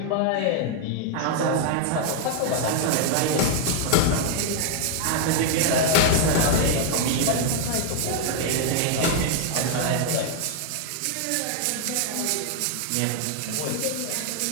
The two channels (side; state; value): both; different; correlation 0.00